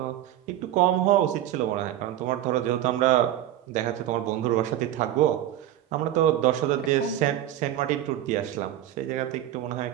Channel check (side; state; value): left; quieter; 12.5 dB